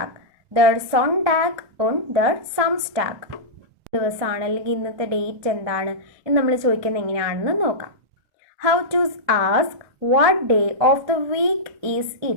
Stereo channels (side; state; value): left; late; 1.2 ms